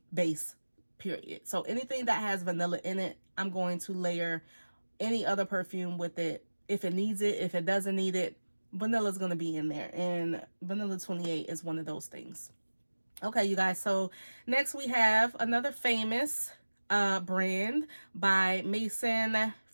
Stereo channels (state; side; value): inverted; both; correlation -1.00